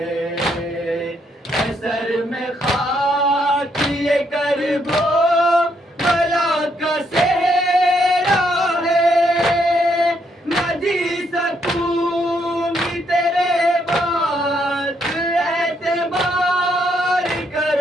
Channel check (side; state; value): both; normal; correlation 0.74